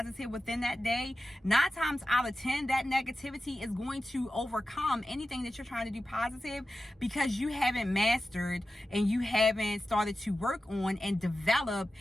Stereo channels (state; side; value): normal; both; correlation 0.93